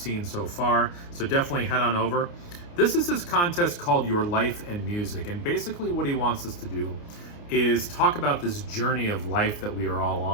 so far, so definitely head on over. This is his contest called Your Life and Music, and basically what he wants us to do is talk about this journey of life that we are all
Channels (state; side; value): late; right; 29 ms